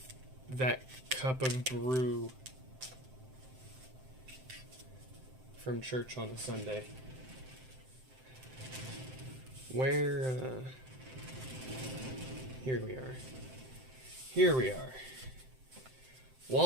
that cup of brew from church on a Sunday. Here we are.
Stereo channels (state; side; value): late; left; 7.7 ms